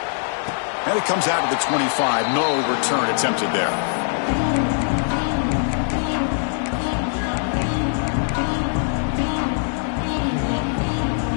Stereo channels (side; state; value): right; silent; digital silence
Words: And it comes out to the 25. No return attempted there.